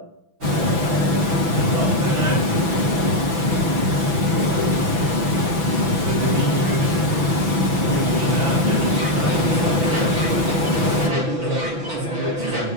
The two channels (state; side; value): late; left; 6.0 ms